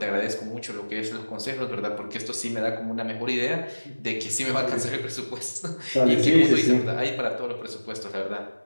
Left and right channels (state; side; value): inverted; both; correlation -1.00